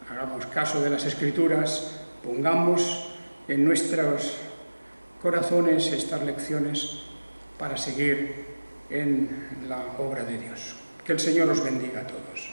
Hagamos caso de las Escrituras, pongamos en nuestros corazones estas lecciones para seguir en la obra de Dios. Que el Señor os bendiga a todos.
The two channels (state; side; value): inverted; both; correlation -1.00